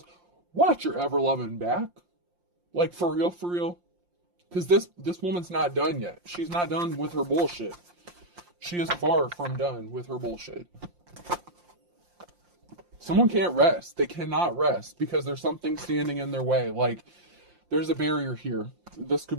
watch your ever loving back. Like, for real, for real. Because this woman's not done yet. She's not done with her bullshit. She is far from done with her bullshit. Someone can't rest. They cannot rest because there's something standing in their way. Like, there's a barrier here. This could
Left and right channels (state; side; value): late; left; 5.7 ms